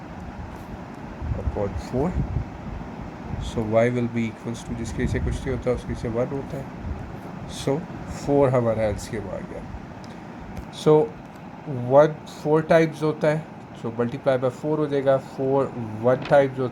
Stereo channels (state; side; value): identical; both; correlation 1.00